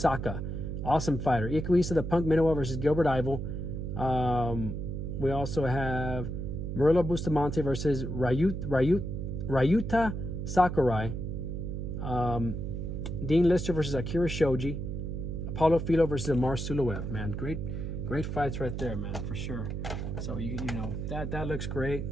Awesome fighter. Ikuhisa the Punk Minowa versus Gilbert Ivel. We also have Murilo Bustamante versus Ryuta Sakurai. Dean Lister versus Akira Shoji. Apollo Filo versus Amar Suluev. Man, great fights right there, man, for sure. So that looks great.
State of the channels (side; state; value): right; noise; hum, 4 dB below the sound